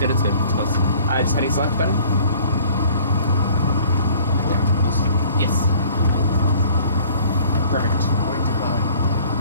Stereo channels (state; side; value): inverted; both; correlation -0.52